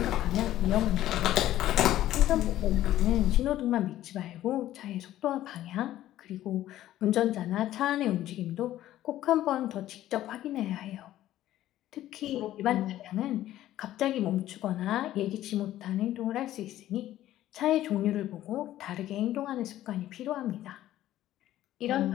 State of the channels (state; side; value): quieter; right; 13.6 dB